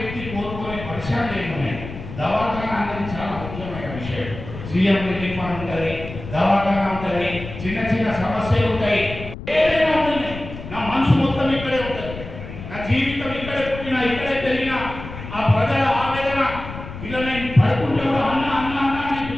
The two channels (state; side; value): noise; left; rumble, 11 dB below the sound